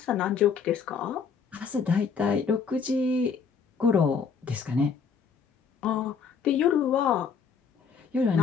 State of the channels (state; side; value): quieter; right; 5.9 dB